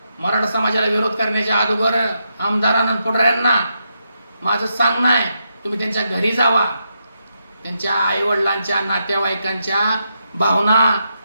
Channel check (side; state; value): both; inverted; correlation -0.83